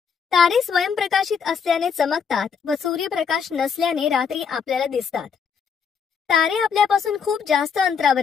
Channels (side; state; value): right; quieter; 6.5 dB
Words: तारे स्वयंप्रकाशित असल्याने चमकतात व सूर्यप्रकाश नसल्याने रात्री आपल्याला दिसतात. तारे आपल्यापासून खूप जास्त